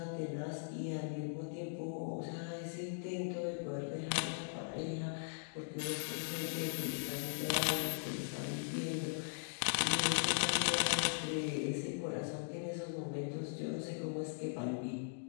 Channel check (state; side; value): silent; right; digital silence